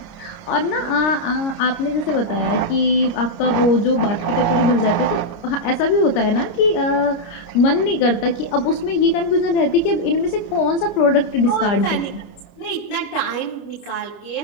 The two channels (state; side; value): late; right; 30 ms